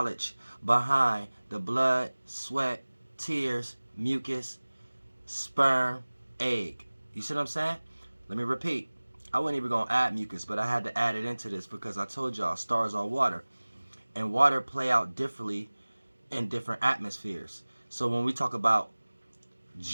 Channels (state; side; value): inverted; both; correlation -1.00